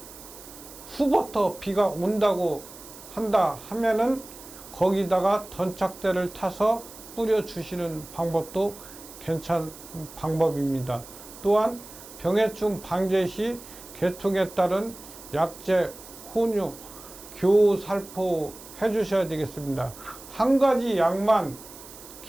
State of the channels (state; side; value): noise; right; hiss, 17 dB below the sound